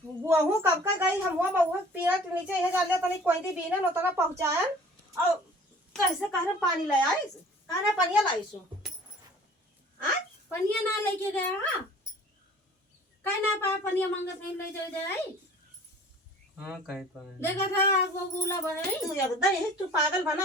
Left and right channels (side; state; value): both; normal; correlation 0.48